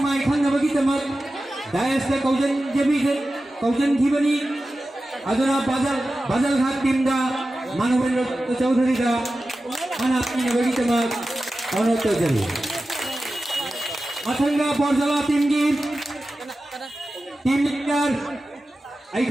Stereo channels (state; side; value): normal; both; correlation 0.94